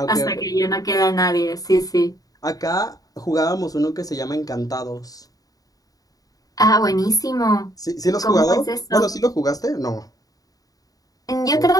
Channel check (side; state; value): right; late; 0.18 ms